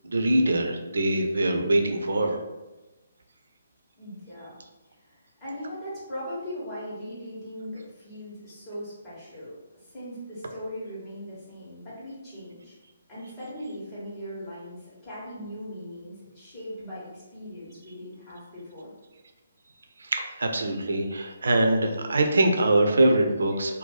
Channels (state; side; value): inverted; both; correlation -0.85